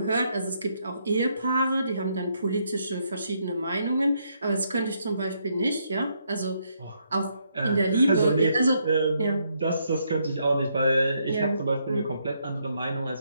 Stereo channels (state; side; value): inverted; both; correlation -0.75